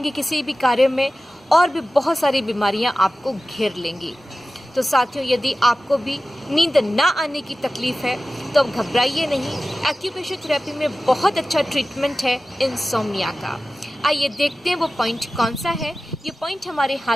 किसी भी कार्य में और भी बहुत सारी बीमारियां आपको घेर लेंगी। तो साथियों, यदि आपको भी नींद ना आने की तकलीफ़ है तो अब घबराइए नहीं। एक्यूप्रेशर थेरेपी में बहुत अच्छा ट्रीटमेंट है इंसोम्निया का। आइए देखते हैं वो पॉइंट कौन सा है। ये पॉइंट हमारे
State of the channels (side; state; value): both; normal; correlation 0.95